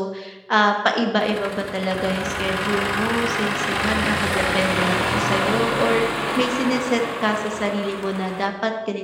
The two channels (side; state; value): both; identical; correlation 1.00